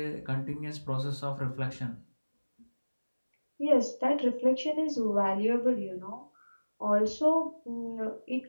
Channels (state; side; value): inverted; both; correlation -1.00